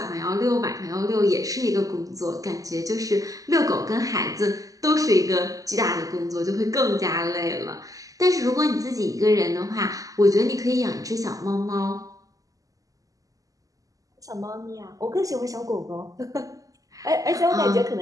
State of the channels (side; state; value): left; late; 0.17 ms